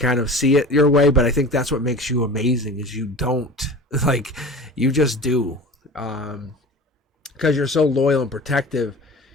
of see it your way, but I think that's what makes you amazing is you don't. Like, you just do. Because you're so loyal and protective,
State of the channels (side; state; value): both; normal; correlation 0.37